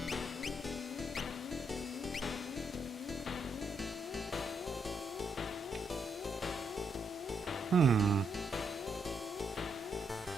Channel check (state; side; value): normal; both; correlation 0.77